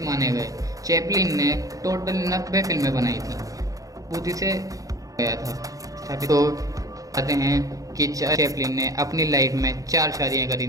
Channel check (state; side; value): late; left; 0.17 ms